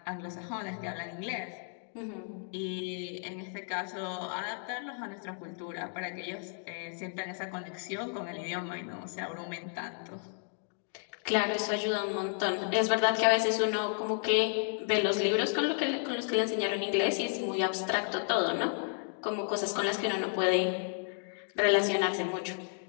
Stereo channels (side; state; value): right; silent; 56 dB below the other